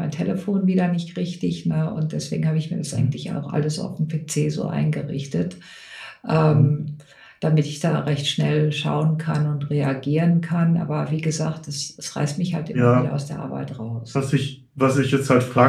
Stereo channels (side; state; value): both; identical; correlation 1.00